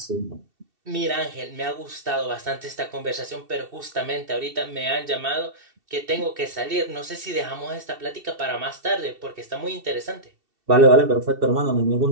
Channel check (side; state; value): left; late; 2.7 ms